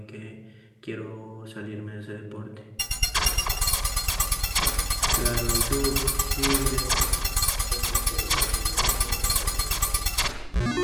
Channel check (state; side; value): identical; both; correlation 1.00